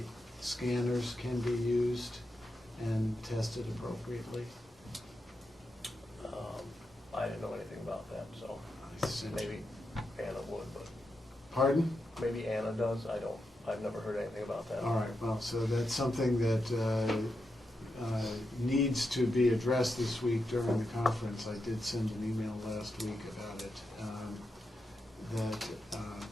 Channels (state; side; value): normal; both; correlation 0.86